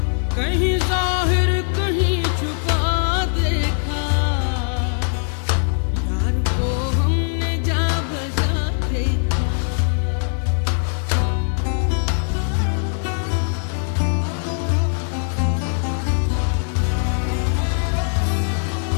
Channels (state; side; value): silent; right; 57 dB below the other